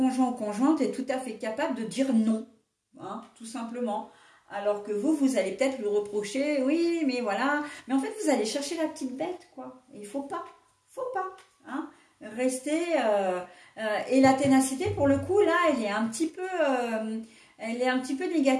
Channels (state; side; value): identical; both; correlation 1.00